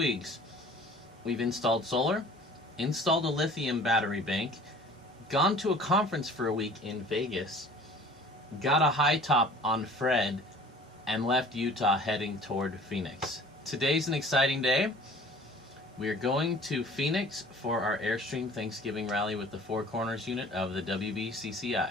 we've installed solar, installed a lithium battery bank, gone to a conference for a week in Vegas, got a high top on Fred, and left Utah heading toward Phoenix. Today's an exciting day. We are going to Phoenix for our Airstream Thanksgiving rally with the Four Corners unit of the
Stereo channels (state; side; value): normal; both; correlation 0.48